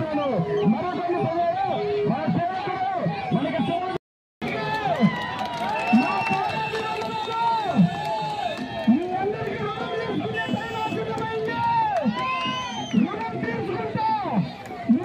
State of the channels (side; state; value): both; identical; correlation 1.00